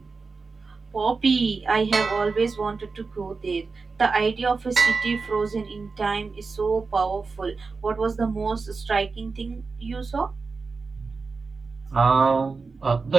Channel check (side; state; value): left; quieter; 4.4 dB